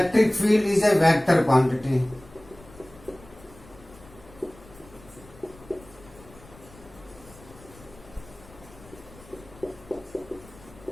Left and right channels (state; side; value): noise; left; rumble, 22 dB below the sound